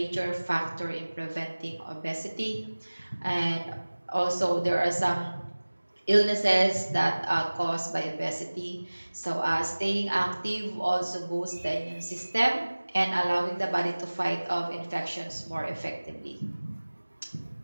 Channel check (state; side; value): inverted; both; correlation -1.00